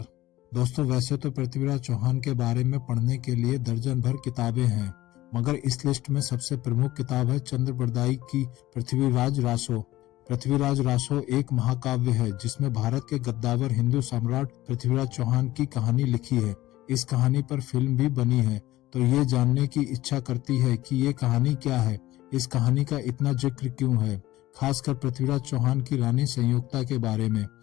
दोस्तों वैसे तो पृथ्वीराज चौहान के बारे में पढ़ने के लिए दर्जन भर किताबें हैं, मगर इस लिस्ट में सबसे प्रमुख किताब है चंद्र बरदाई की पृथ्वीराज रासो। पृथ्वीराज रासो एक महाकाव्य है जिसमें भारत के गद्दावर हिंदू सम्राट पृथ्वीराज चौहान की कहानी लिखी है। इस कहानी पर फिल्म भी बनी है, तो ये जानने की इच्छा करती है कि ये कहानी क्या है, इस कहानी का इतना जिक्र क्यों है, खासकर पृथ्वीराज चौहान की रानी संयुक्ता के बारे में।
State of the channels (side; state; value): right; quieter; 16.5 dB